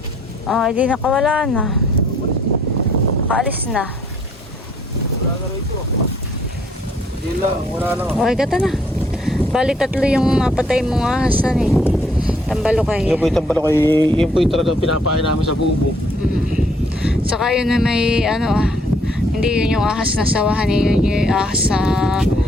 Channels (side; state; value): both; normal; correlation 0.65